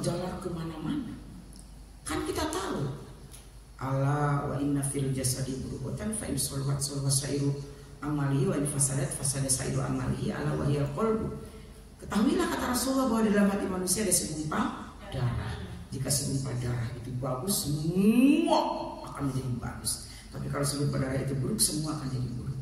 kemana-mana. Kan kita tahu, ala wa inna fil jasadi mudghatan fa in salahat salaha sairu amalihi wa in fasadat fasada sairu amalihi ala wa hiyal qalbu. Ketahuilah kata Rasulullah bahwa di dalam hati manusia ada segumpal darah. Jika segumpal darah itu bagus, semua akan menjadi bagus. Tapi kalau segumpal darah itu buruk, semua akan jadi buruk.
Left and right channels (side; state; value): both; identical; correlation 1.00